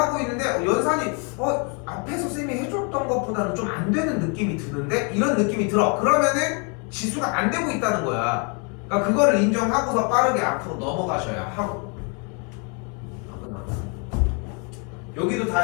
있는데 연산이 앞에서 쌤이 해줬던 것보다는 좀 안 되는 느낌이 드는데 이런 느낌이 들어. 그러면은 지수가 안 되고 있다는 거야. 그러니까 그거를 인정하고서 빠르게 앞으로 넘어가셔야 하고. 여기도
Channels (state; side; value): quieter; right; 36.0 dB